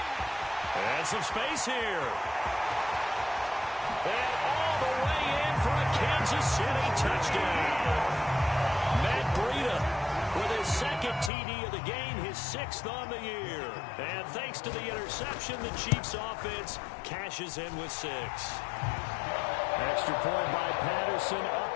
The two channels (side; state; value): right; drops out; at 11.3 s